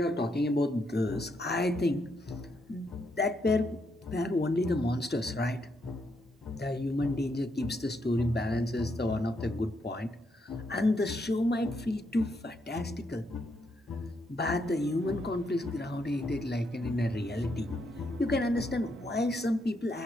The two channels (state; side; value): normal; both; correlation 0.78